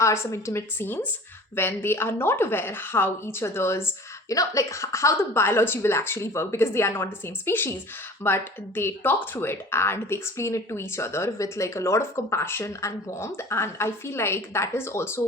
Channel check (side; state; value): both; normal; correlation 0.43